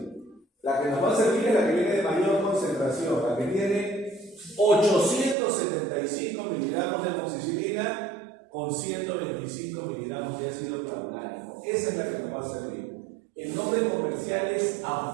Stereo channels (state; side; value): drops out; left; at 5.4 s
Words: La que nos va a servir es la que viene de mayor concentración, la que tiene 875 miligramos de amoxicilina con 125 miligramos de ácido clavulánico. Esa es la que nos va a servir. El nombre comercial es